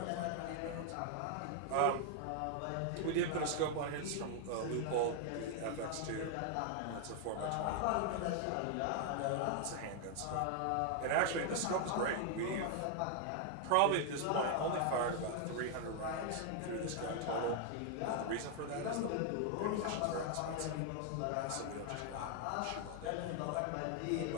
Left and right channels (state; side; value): different; both; correlation 0.00